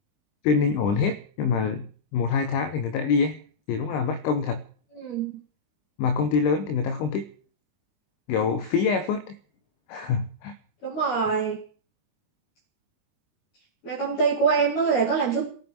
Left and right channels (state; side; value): late; right; 20 ms